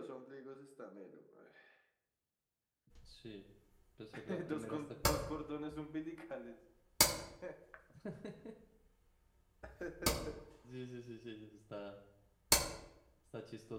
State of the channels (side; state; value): both; identical; correlation 1.00